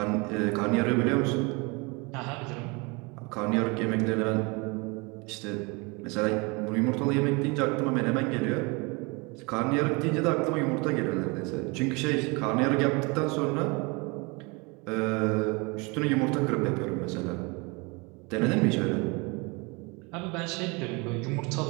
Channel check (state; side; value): quieter; left; 28.3 dB